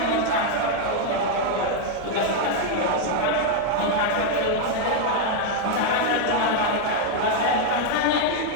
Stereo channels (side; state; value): both; different; correlation 0.00